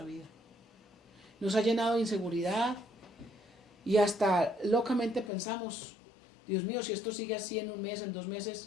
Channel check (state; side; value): drops out; right; at 5.3 s